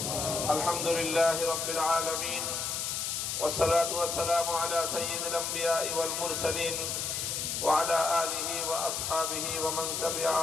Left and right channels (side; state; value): left; noise; hiss, 2 dB below the sound